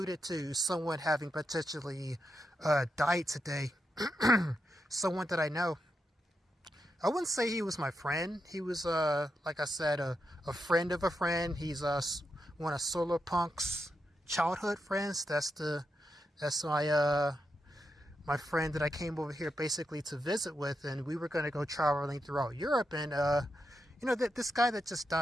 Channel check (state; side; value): normal; both; correlation 0.85